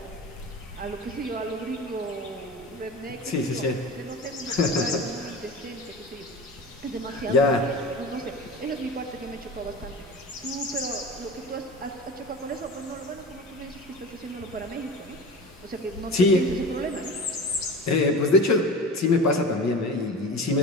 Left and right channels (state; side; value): normal; both; correlation 0.33